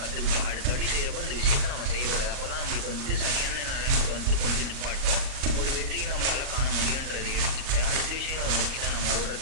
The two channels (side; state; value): left; late; 38 ms